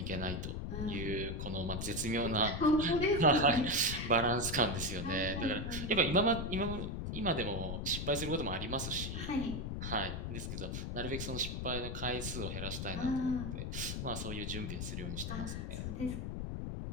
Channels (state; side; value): noise; left; rumble, 4 dB below the sound